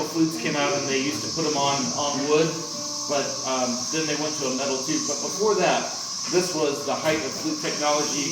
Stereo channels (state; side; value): identical; both; correlation 1.00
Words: flutes came out and they used to put them on wood, but then they went to a metal tube. But before that, this was the height of flute technology.